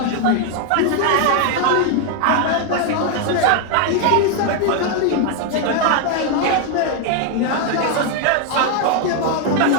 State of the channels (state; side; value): different; both; correlation 0.00